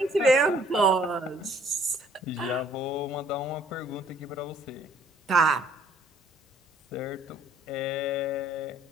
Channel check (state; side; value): normal; both; correlation 0.60